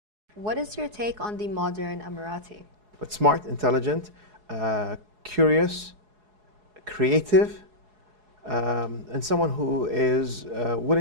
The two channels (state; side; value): late; left; 4.7 ms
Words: What is your take on the modern Emirati? But smart, intelligent, curious, creative, and someone who is